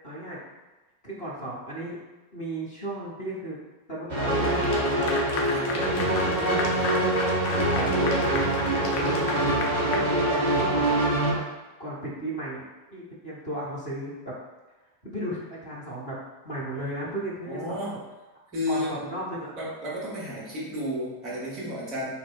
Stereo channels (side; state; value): right; late; 2.9 ms